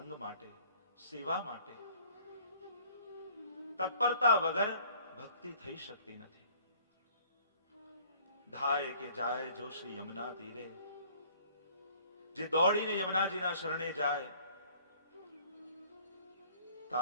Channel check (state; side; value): inverted; both; correlation -0.55